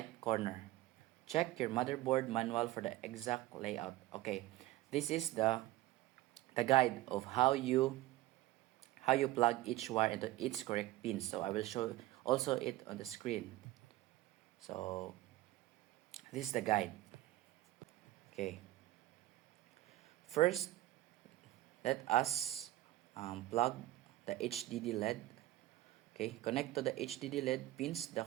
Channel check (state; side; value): quieter; left; 16.5 dB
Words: corner. Check your motherboard manual for the exact layout. Okay, this is the guide of how you plug each wire into its correct pin. So I will show also it on the screen. So this is the guide. Okay. First, let us plug the HDD LED. Okay, connect to the HDD LED pins. The